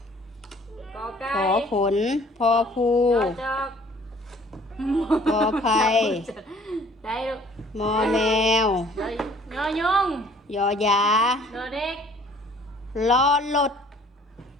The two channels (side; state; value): both; normal; correlation 0.55